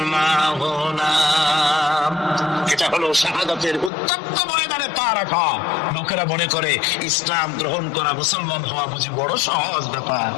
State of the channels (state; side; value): drops out; right; at 3.9 s